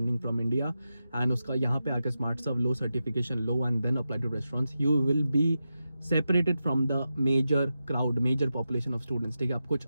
from India, and उसका यहाँ पे आके स्मार्ट सर्व लो, सर्टिफिकेशन लो, and then apply to restaurants. You will be separated from the major crowd, major population of students. ठीक है, आप कुछ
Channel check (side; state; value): both; inverted; correlation -0.90